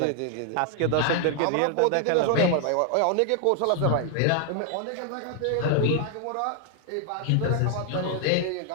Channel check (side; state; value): both; different; correlation 0.00